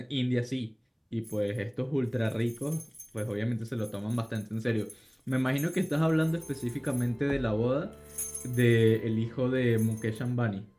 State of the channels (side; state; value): both; identical; correlation 1.00